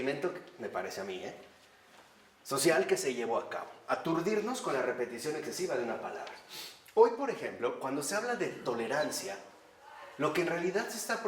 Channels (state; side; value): identical; both; correlation 1.00